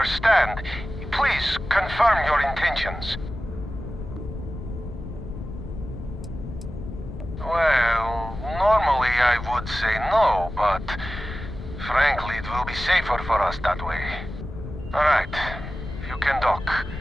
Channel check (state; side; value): noise; left; rumble, 10 dB below the sound